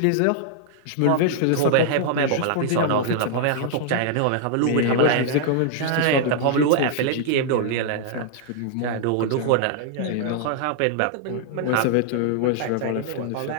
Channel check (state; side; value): different; both; correlation -0.01